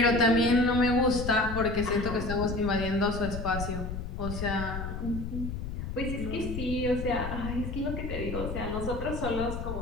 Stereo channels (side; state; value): left; noise; rumble, 6 dB below the sound